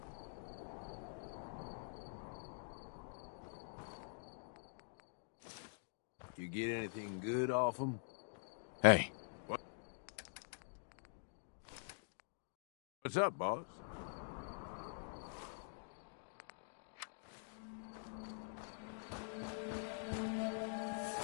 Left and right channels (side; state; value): right; silent; digital silence